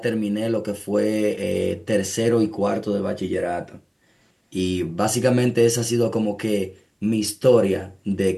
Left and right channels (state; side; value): identical; both; correlation 1.00